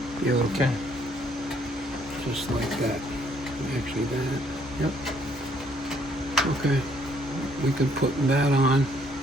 Beautiful. Okay. Just like that. Actually that. Yep. Okay. We can put that on.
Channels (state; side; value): normal; both; correlation 0.66